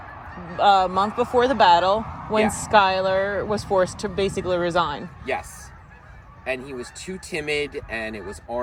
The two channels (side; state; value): both; identical; correlation 1.00